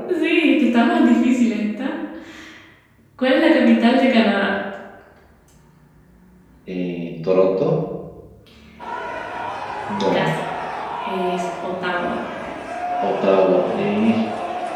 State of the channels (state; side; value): identical; both; correlation 1.00